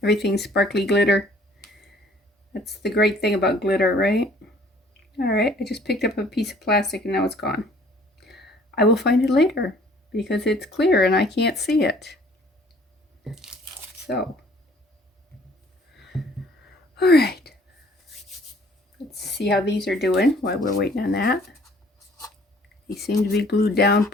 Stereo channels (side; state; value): both; normal; correlation 0.56